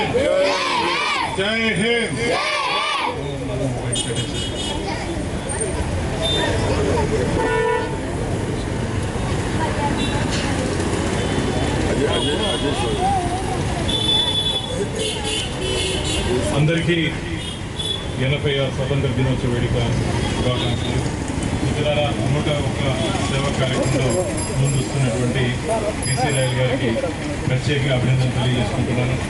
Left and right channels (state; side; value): identical; both; correlation 1.00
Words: జై హింద్. అందరికీ 80వ స్వతంత్ర దినోత్సవ వేడుక శుభాకాంక్షలు. ఇతర 101 సేవా కార్యక్రమంలో ముందుస్తున్నటువంటి పీసీ రాయల్ గారికి ప్రత్యేకంగా అభినందనలు తెలియజేసుకుంటున్నాను.